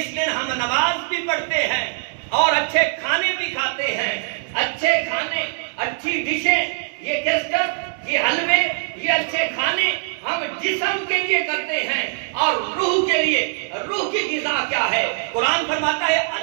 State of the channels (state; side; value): silent; left; digital silence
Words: دن ہم نماز بھی پڑھتے ہیں اور اچھے کھانے بھی کھاتے ہیں۔ اچھے کھانے، اچھی ڈشیں، یہ کیسٹر، یہ حلوے، یہ اچھے کھانے ہم جسم کے لیے کرتے ہیں اور روح کے لیے۔ روح کی غذا کیا ہے؟ قرآن فرماتا ہے